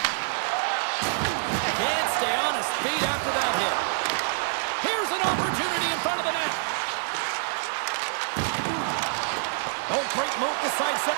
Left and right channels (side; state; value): left; silent; digital silence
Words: Can't stay on his feet after that hit. Here's an opportunity in front of the net. Oh, great move to